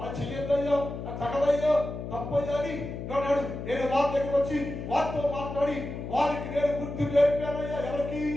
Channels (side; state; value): left; noise; hum, 7 dB below the sound